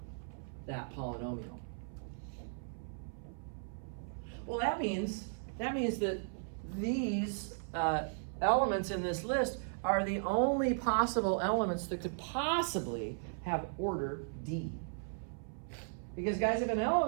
that polynomial. Well, that means that these elements in this list are the only possible elements that could possibly have order D. Because guys, if an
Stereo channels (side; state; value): left; silent; 53 dB below the other